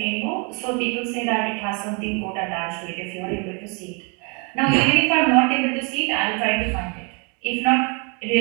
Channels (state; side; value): quieter; left; 34.3 dB